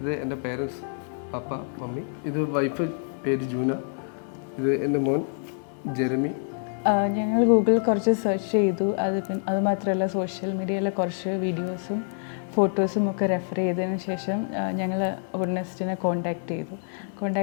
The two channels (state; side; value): silent; right; digital silence